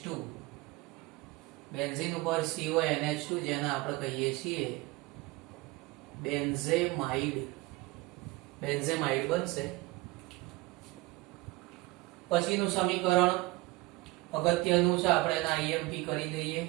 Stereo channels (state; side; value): quieter; left; 21.6 dB